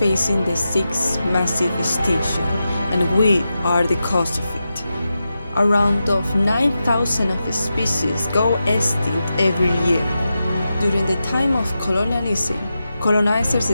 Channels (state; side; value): inverted; both; correlation -0.90